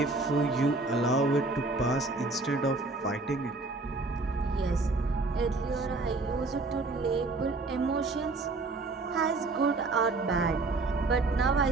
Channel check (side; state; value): left; quieter; 3.4 dB